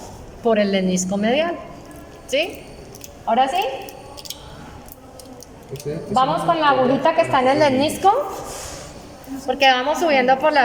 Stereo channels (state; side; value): identical; both; correlation 1.00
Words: por el lemnisco medial, ¿sí? ¿Ahora sí? Vamos con la agujita que está en el lemnisco, porque vamos subiendo por